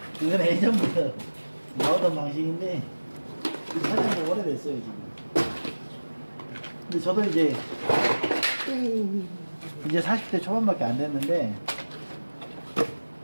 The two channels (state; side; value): inverted; both; correlation -1.00